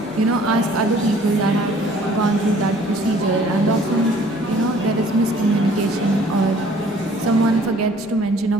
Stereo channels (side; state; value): left; noise; rumble, 25 dB below the sound